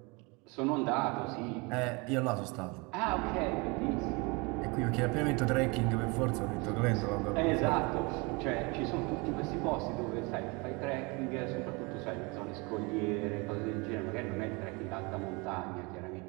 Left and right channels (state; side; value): quieter; left; 28.0 dB